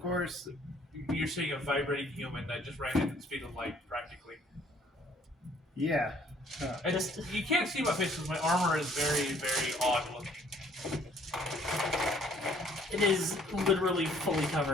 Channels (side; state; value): both; normal; correlation 0.61